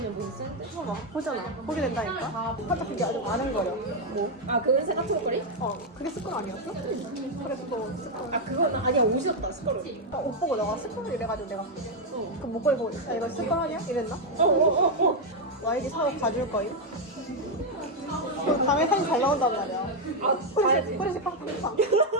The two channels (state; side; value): normal; both; correlation 0.02